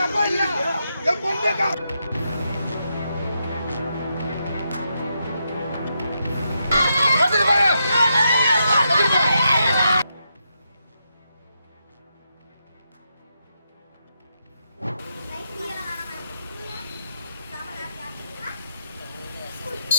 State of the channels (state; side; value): inverted; both; correlation -0.82